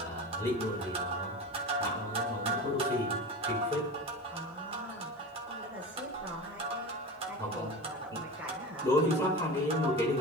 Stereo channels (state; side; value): normal; both; correlation 0.29